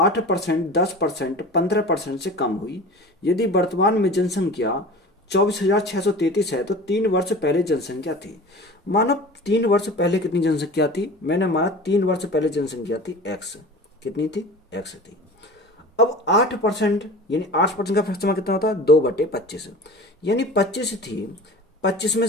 10%, 15% से कम हुई। यदि वर्तमान में जनसंख्या 24,633 है तो 3 वर्ष पहले जनसंख्या थी। मानो 3 वर्ष पहले कितनी जनसंख्या थी? मैंने माना 3 वर्ष पहले जनसंख्या थी एक्स। कितनी थी? एक्स थी। अब 8%, यानी 8% का फ्रैक्शन कितना होता है? 2/25। यानी 25 थी, 25 में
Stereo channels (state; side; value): normal; both; correlation 0.37